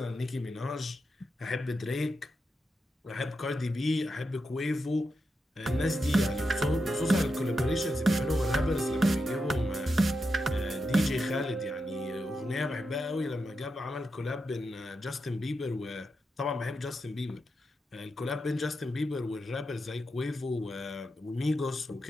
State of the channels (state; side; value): normal; both; correlation 0.87